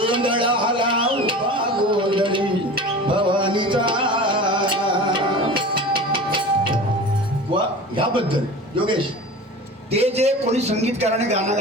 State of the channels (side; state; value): both; normal; correlation 0.36